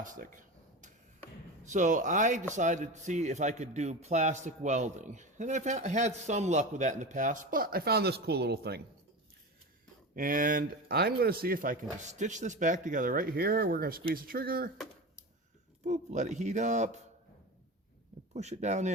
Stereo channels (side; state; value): both; normal; correlation 0.26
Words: So I decided to see if I could do plastic welding. And I've had some luck with that in the past, but I found this cool little thing. And I'm going to see if I can just stitch this back together right here. We're going to squeeze the trigger. Boop, let it heat up. And push it down